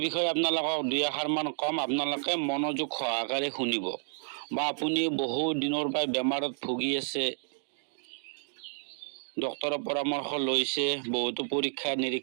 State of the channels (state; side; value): silent; left; digital silence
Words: বিষয়ে আপোনালোকক দুই এষাৰমান কম, আপোনালোকে মনোযোগ সহকাৰে শুনিব। বা আপুনি বহু দিনৰ পৰা বেমাৰত ভুগি আছে, ডক্তৰৰ পৰামৰ্শ লৈছে, বহুতো পৰীক্ষা